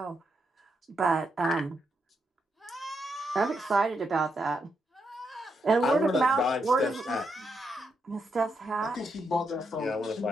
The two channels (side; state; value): both; normal; correlation 0.81